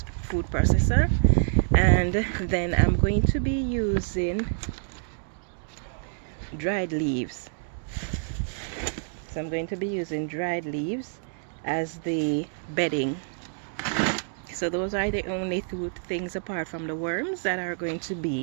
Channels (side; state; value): left; silent; digital silence